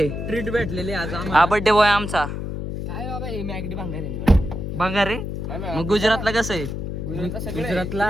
ट्रीट भेटलेली आज हा बर्थडे बॉय आमचा. काय बाबा हे मॅगडी भांगार भंगार रे. मग गुजरातला कसं आहे?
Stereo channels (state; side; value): noise; left; hum, 5 dB below the sound